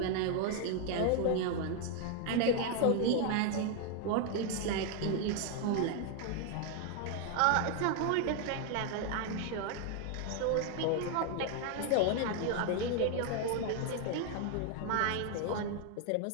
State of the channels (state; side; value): different; both; correlation 0.01